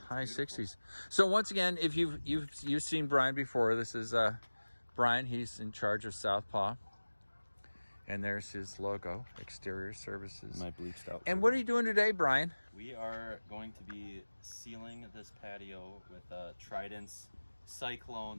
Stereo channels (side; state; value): both; inverted; correlation -1.00